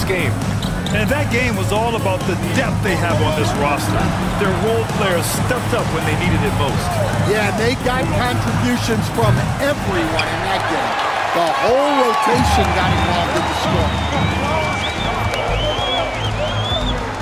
game. And that game was all about the depth they have on this roster. Their role players stepped up when they needed it most. Yeah, they got contributions from everyone in that game. The whole rotation got involved in the score.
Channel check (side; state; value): both; identical; correlation 1.00